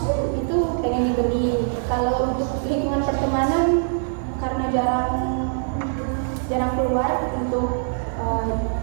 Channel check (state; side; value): silent; left; digital silence